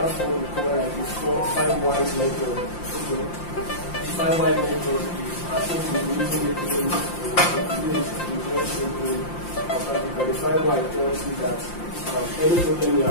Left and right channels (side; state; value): right; late; 5.7 ms